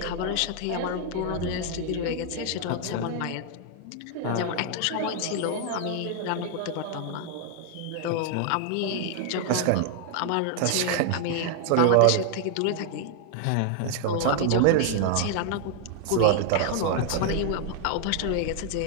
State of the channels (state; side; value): different; both; correlation 0.00